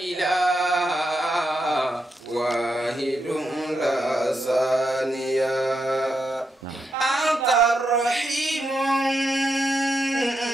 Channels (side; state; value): both; normal; correlation 0.83